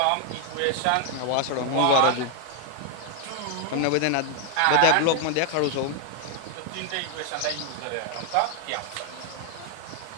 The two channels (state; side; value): different; both; correlation 0.00